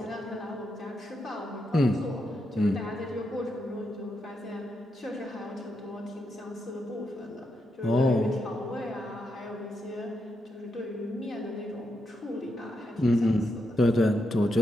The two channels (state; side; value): normal; both; correlation 0.83